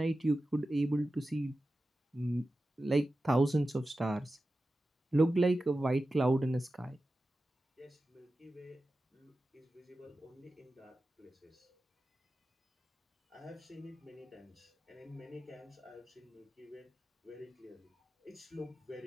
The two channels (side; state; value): both; normal; correlation 0.93